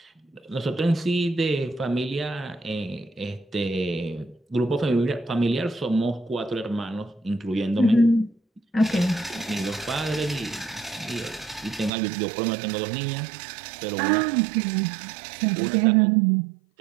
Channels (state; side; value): drops out; left; at 11.9 s